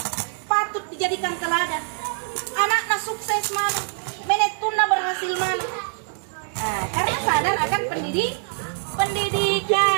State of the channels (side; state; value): left; silent; digital silence